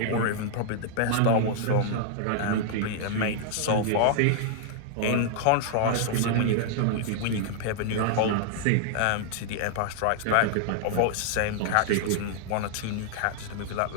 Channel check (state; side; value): different; both; correlation -0.01